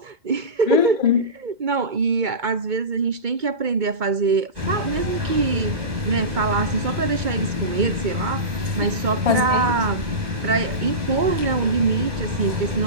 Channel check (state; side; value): late; left; 2.2 ms